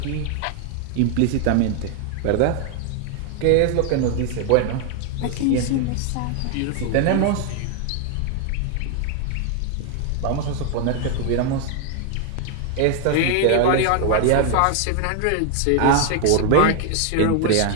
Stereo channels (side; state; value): both; different; correlation 0.00